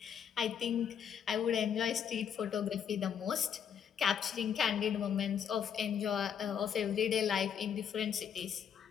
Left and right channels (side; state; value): right; quieter; 8.1 dB